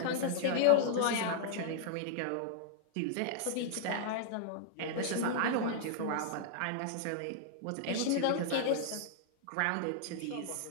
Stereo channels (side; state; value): both; different; correlation -0.01